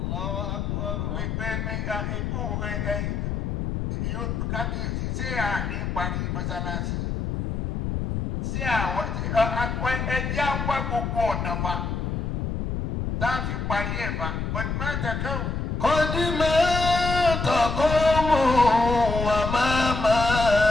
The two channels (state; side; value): noise; left; rumble, 2 dB below the sound